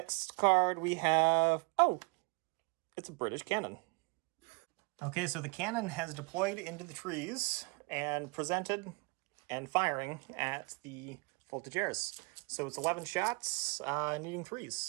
card we have, it's a British cannon. Okay, so the cannon has deployed into the trees and presented and firing at the Voltigeurs. So it's 11 shots, needing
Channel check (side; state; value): left; quieter; 30.1 dB